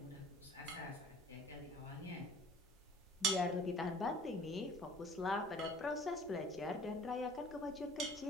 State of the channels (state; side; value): normal; both; correlation 0.49